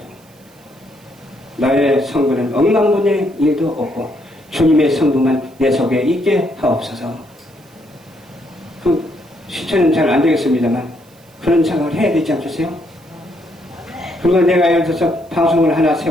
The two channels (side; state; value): right; noise; hiss, 29 dB below the sound